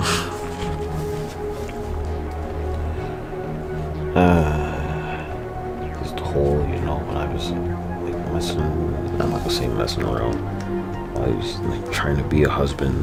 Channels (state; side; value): identical; both; correlation 1.00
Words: Just the whole, you know, when I was like messing, I'm not gonna say messing around. I was like trying to be a